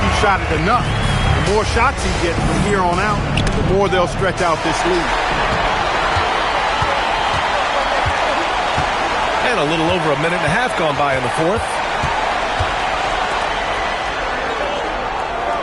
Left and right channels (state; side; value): identical; both; correlation 1.00